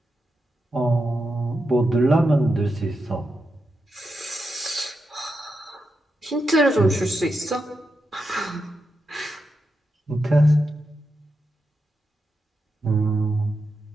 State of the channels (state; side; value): normal; both; correlation 0.87